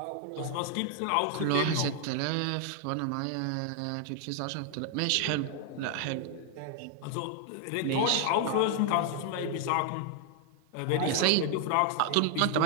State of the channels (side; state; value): both; different; correlation 0.00